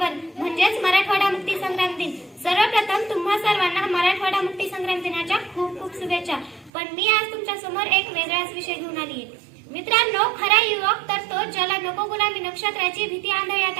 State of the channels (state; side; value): drops out; left; at 6.7 s